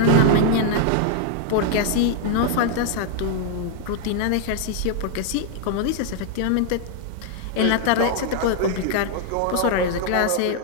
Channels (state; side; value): different; both; correlation 0.00